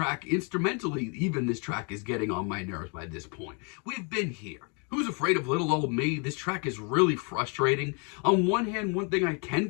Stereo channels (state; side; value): quieter; right; 36.0 dB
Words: instrumentally, even this track is getting on my nerves by this point. We've been here. Who's Afraid of Little Old Me? This track is really frustrating. On one hand, one thing I can